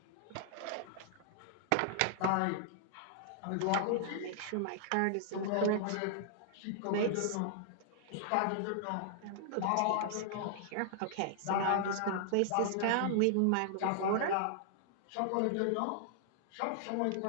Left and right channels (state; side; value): different; both; correlation -0.01